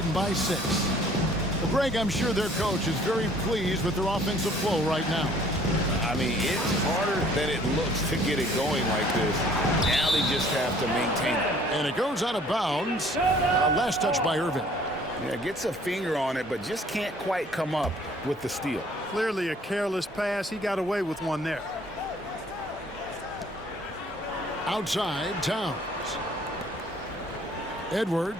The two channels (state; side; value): normal; both; correlation 0.56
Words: by 6. Well, Greg, I'm sure their coach is very pleased with their offensive flow right now. I mean, it's harder than it looks to get it going like this. Now they just have to maintain it. And it goes out of bounds. Last touch by Irving. Yeah, gets a finger on it, but just can't quite come up with the steal. Clearly a careless pass. He got away with one there. Outside, Towns.